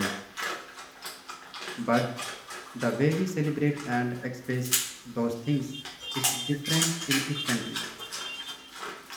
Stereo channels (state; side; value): identical; both; correlation 1.00